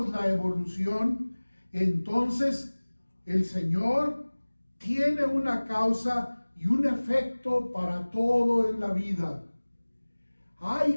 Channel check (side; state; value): both; inverted; correlation -1.00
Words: la evolución, entonces el Señor tiene una causa y un efecto para todo en la vida.